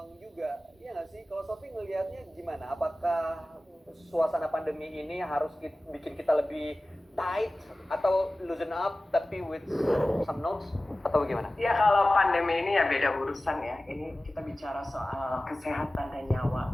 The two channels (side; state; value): both; normal; correlation 0.96